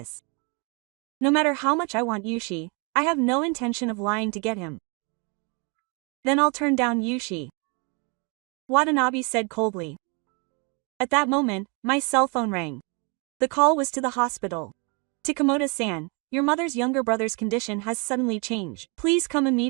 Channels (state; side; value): quieter; left; 32.6 dB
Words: No matter how much I want Yushi, I have no intention of lying to get him. Then I'll turn down Yushi. Watanabe said coldly. At that moment, my cell phone rang. The call was to the hospital. Takamoto-san, your mother's younger brother's condition has suddenly changed. Please come